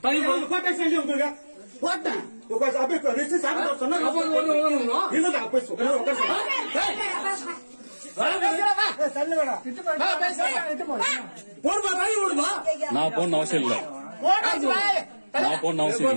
நான் போன அவசியம் இல்ல. நான் போன அவசியம்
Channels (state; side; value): inverted; both; correlation -1.00